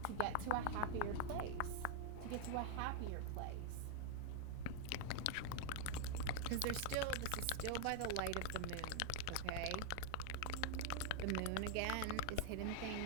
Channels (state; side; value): different; both; correlation 0.00